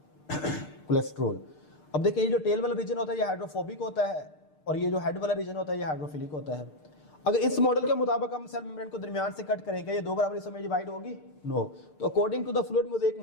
कोलेस्ट्रॉल। अब देखिए ये जो टेल वाला रीजन होता है ये हाइड्रोफोबिक होता है, और ये जो हेड वाला रीजन होता है ये हाइड्रोफिलिक होता है। अगर इस मॉडल के मुताबिक हम सेल मेम्ब्रेन को दरमियान से कट करेंगे, ये दो बराबर हिस्सों में डिवाइड होगी? नो। तो according to the fluid mosaic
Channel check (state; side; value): late; right; 6.6 ms